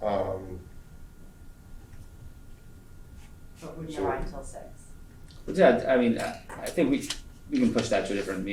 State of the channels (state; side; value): identical; both; correlation 1.00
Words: wouldn't So- arrive until 6. But yeah, I mean, I think we can push that to a different